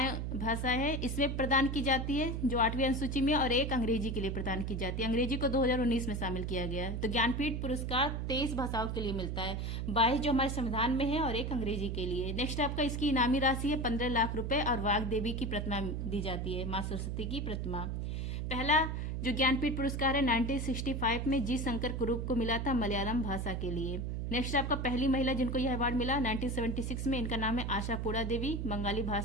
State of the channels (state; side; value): noise; right; hum, 2 dB below the sound